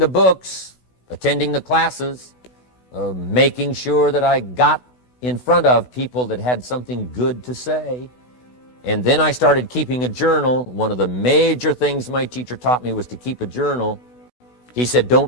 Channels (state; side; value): late; right; 16 ms